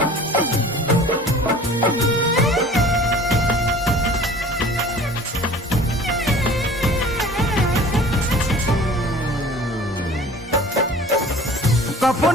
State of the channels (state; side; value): normal; both; correlation 0.46